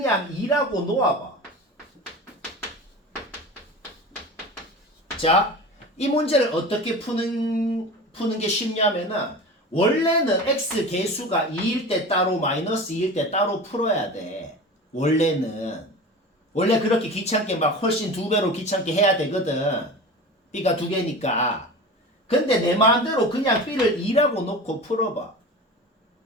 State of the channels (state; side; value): normal; both; correlation 0.32